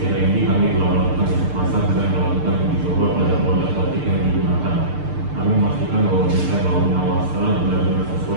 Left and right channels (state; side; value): late; left; 6.7 ms